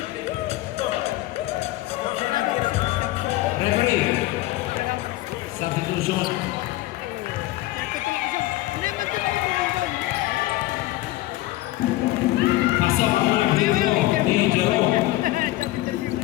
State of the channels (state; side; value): quieter; right; 17.4 dB